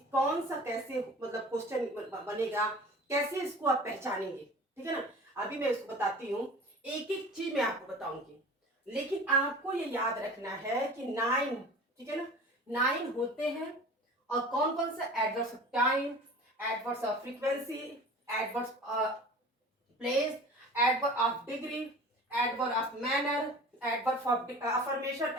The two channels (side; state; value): both; normal; correlation 0.40